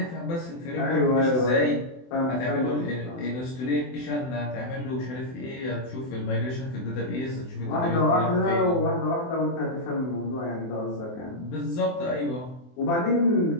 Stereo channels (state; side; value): late; right; 24 ms